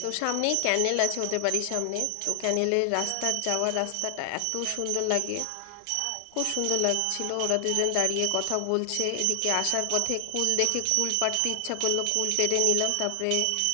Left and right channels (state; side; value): different; both; correlation 0.00